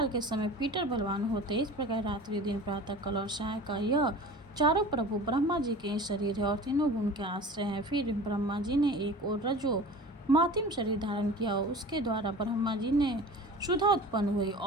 के समय पीटर बलवान होते। इस प्रकार रात्रि, दिन, प्रातः काल और सायकाल यह चारों प्रभु ब्रह्मा जी के शरीर है और तीनों गुण के आश्रय हैं। फिर ब्रह्मा जी ने एक और रजो मातिम शरीर धारण किया। उसके द्वारा ब्रह्मा जी ने सुधा उत्पन्न हुई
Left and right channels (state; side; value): normal; both; correlation 0.38